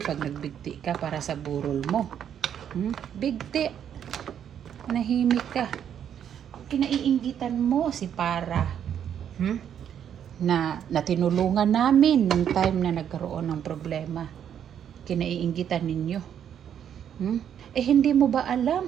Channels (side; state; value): left; quieter; 9.1 dB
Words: pag nagbigti ka para sa burol mo. Bigti. Nahimik ka. Kinaiinggitan mo si Para. Na tinulungan namin nung time na nagkaroon ng problema. Kinaiinggitan ninyo. Eh hindi mo ba alam?